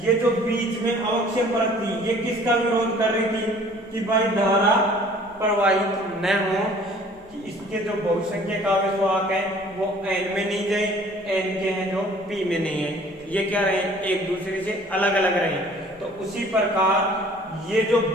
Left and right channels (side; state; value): both; normal; correlation 0.52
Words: ये जो बीच में अवक्षय परत थी, ये किसका विरोध कर रही थी? कि भाई धारा प्रवाहित न हो, कि इसके जो बहुसंख्यक आवेशवाहक है वो एन में नहीं जाए, एन के हैं जो पी में नहीं है, ये क्या रहे? एक दूसरे से अलग अलग रहे। तो उसी प्रकार ये जो